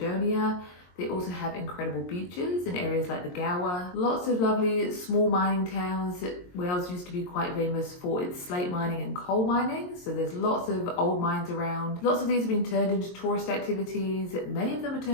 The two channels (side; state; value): right; late; 22 ms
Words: They also have incredible beaches in areas like the Gower. Lots of lovely small mining towns. Wales used to be quite famous for its slate mining and coal mining, so there's lots of old mines around. Lots of these have been turned into tourist activities. Many of them are